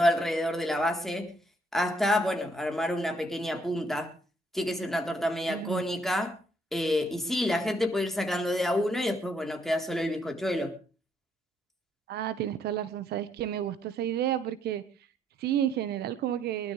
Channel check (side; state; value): both; normal; correlation 0.70